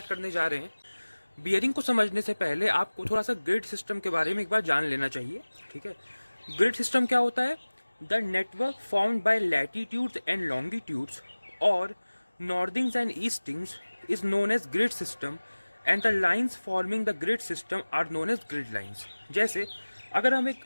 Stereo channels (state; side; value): inverted; both; correlation -1.00